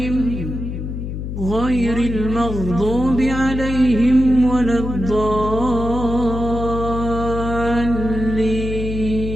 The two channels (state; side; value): noise; left; hum, 6 dB below the sound